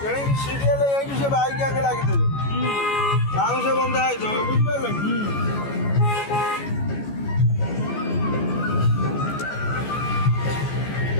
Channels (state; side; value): late; right; 14 ms